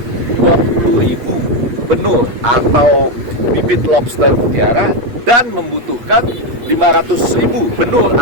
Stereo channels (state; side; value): late; left; 8.4 ms